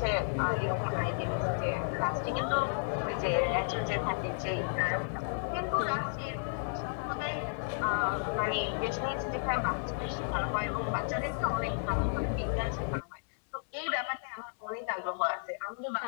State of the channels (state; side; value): silent; right; digital silence